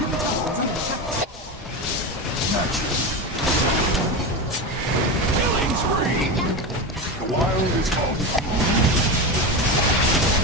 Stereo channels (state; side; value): normal; both; correlation 0.19